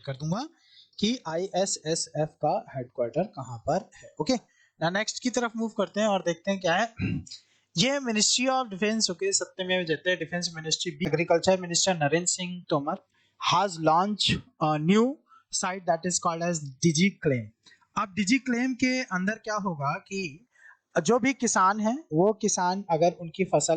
कर दूंगा कि ISSF का हेडक्वार्टर कहाँ पर है, ओके। ना नेक्स्ट की तरफ मूव करते हैं और देखते हैं क्या है। ये मिनिस्ट्री ऑफ डिफेंस, ओके, सत्यमेव जयते, defence ministry, agriculture minister Narendra Singh Tomar has launch a new site that is called as digi claim. अब डिजी क्लेम के अंदर क्या होगा कि जो भी किसान है, वो किसान अगर उनकी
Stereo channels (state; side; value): identical; both; correlation 1.00